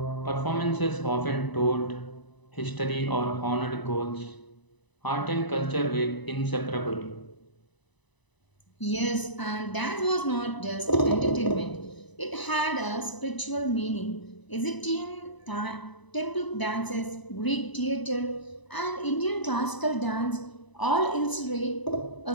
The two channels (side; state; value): right; late; 1.0 ms